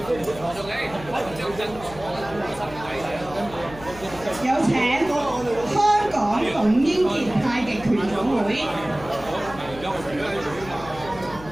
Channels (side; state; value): left; noise; hum, 16 dB below the sound